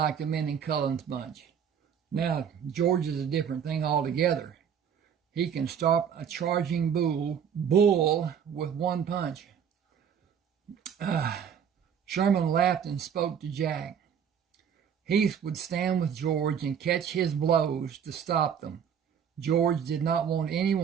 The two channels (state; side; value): quieter; left; 7.9 dB